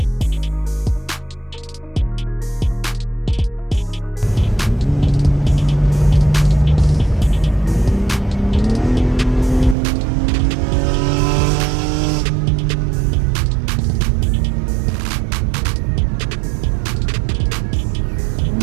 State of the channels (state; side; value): drops out; left; at 9.8 s